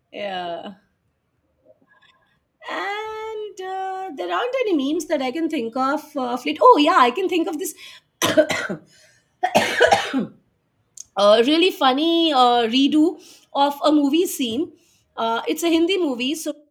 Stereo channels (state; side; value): identical; both; correlation 1.00